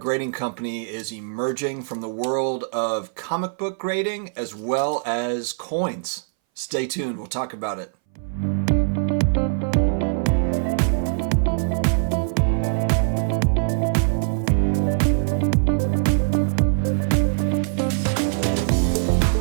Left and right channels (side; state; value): left; silent; 61 dB below the other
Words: grading company is emerging from the world of comic book grading as well as coins. Stay tuned, we'll talk about it.